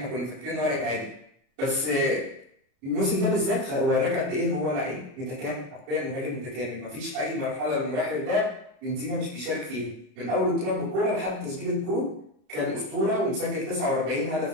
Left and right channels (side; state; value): left; late; 33 ms